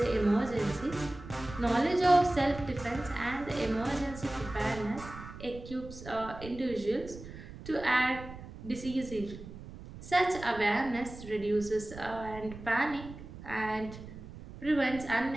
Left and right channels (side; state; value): right; noise; rumble, 14 dB below the sound